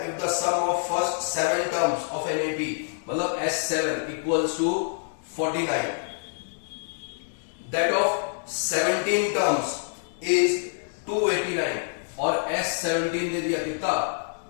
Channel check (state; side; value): silent; right; digital silence